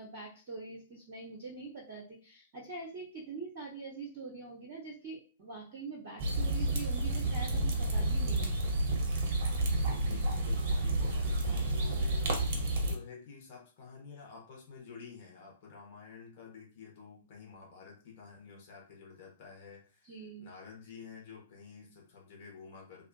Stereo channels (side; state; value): both; inverted; correlation -0.66